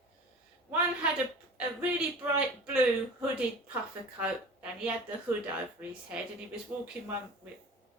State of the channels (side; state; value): both; normal; correlation 0.38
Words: One had a really bright blue hooded puffer coat, and he had the hood over his head, and he was walking one with